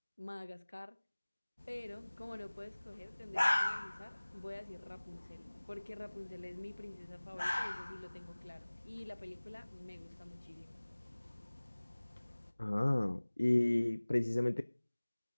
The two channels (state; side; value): inverted; both; correlation -1.00